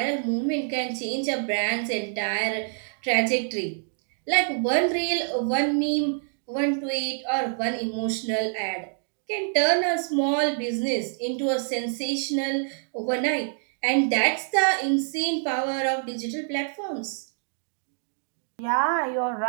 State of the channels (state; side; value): silent; left; digital silence